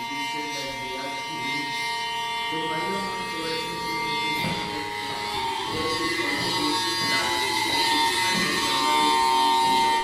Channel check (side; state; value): both; identical; correlation 1.00